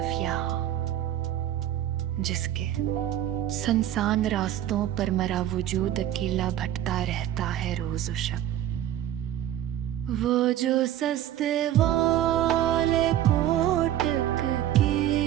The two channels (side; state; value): left; quieter; 12.0 dB